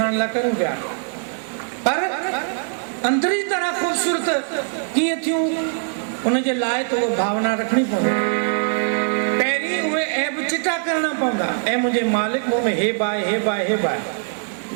लाइ करूं पिया, पर अंदरी तरह ख़ूबसूरत कीअं थियूं उनजे लाइ त उहा भावना रखणी पवंदी। पहिरीं उहे ऐब चिटा करणा पवंदा। ऐं मुंहिंजे मालिक मूं में हेब आहे, हेब आहे, हेब आहे।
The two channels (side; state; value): left; silent; 64 dB below the other